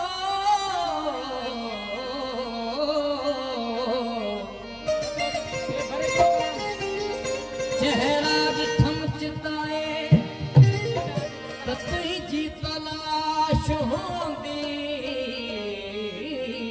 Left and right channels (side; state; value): both; identical; correlation 1.00